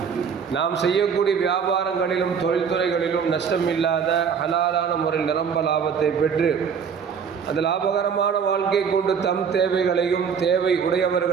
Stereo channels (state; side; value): quieter; left; 6.7 dB